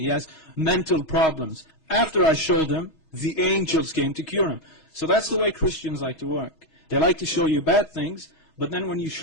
He has mental problems. After I showed him, the angels came to cure him. So that's the way Christians like to work. They like to show you bad things, but then when you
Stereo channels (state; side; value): late; right; 6.3 ms